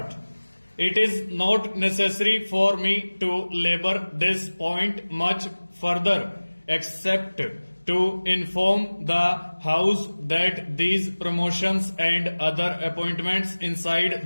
It is not necessary for me to labor this point much further, except to inform the House that these promotions and other appointments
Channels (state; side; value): inverted; both; correlation -1.00